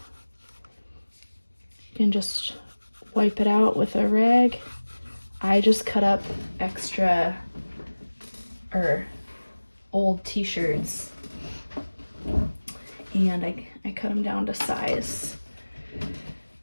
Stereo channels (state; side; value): inverted; both; correlation -1.00